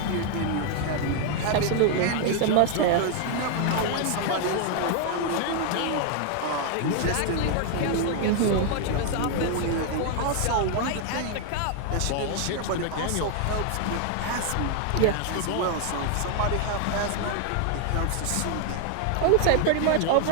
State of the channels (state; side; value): different; both; correlation 0.00